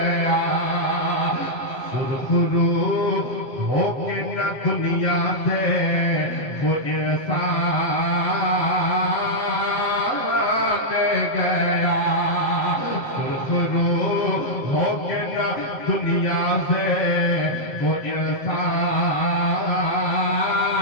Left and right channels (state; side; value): late; right; 7.3 ms